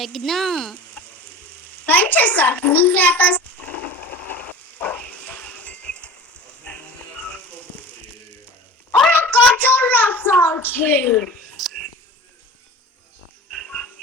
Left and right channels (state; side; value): normal; both; correlation 0.38